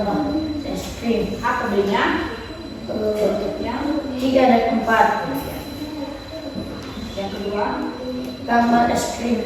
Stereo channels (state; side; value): identical; both; correlation 1.00